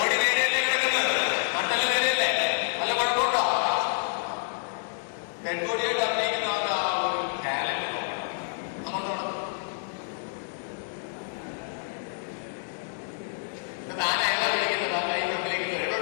നേരെയല്ലേ കിടക്കുന്നത്, നട്ടല് നേരെയല്ലേ, നല്ല കുഴപ്പമുണ്ടോ? ഡെഡ് ബോഡിയായിട്ട് അഭിനയിക്കുന്ന ആ ഒരു ടാലന്റ് താനായാലും വിളിക്കുന്നത് കൈ ഫ്രണ്ടിലേക്ക് കേട്ടോ,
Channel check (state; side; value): silent; right; digital silence